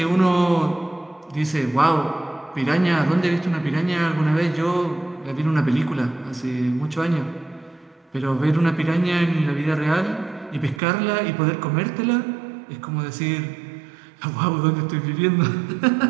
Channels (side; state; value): left; drops out; at 10.8 s